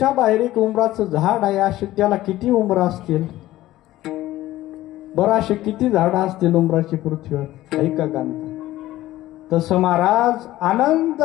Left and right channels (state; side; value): quieter; right; 15.6 dB